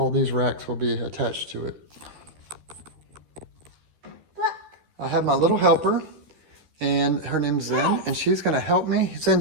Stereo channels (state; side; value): late; left; 13 ms